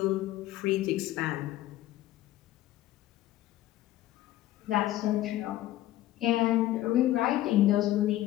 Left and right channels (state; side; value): quieter; right; 14.8 dB